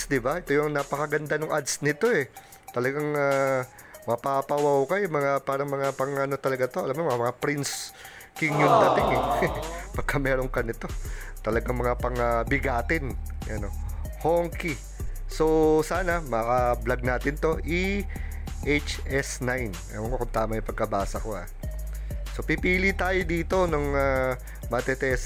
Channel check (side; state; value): both; identical; correlation 1.00